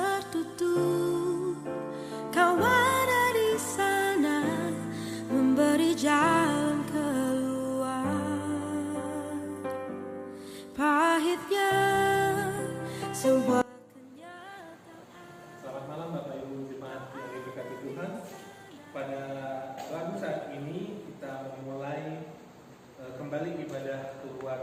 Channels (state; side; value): identical; both; correlation 1.00